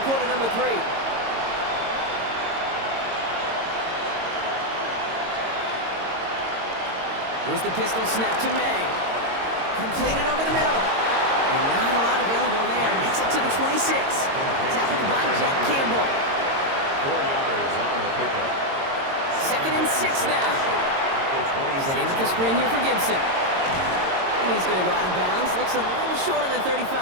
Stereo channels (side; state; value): left; late; 22 ms